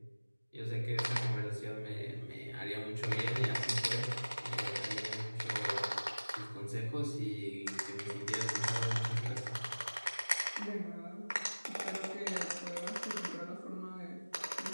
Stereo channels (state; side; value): inverted; both; correlation -1.00